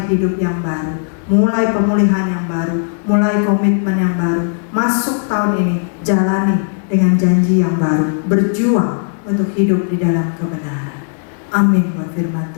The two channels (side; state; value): right; silent; digital silence